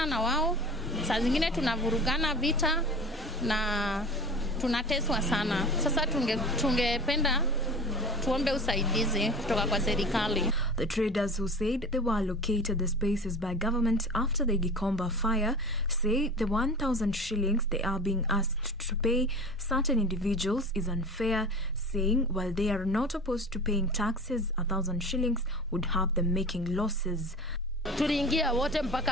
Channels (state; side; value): normal; both; correlation 0.36